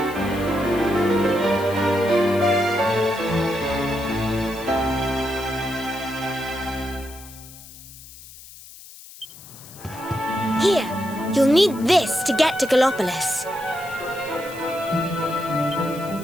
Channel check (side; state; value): left; noise; hiss, 18 dB below the sound